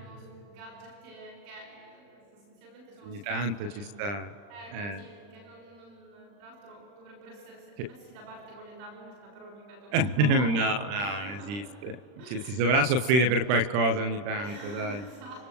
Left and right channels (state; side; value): late; left; 40 ms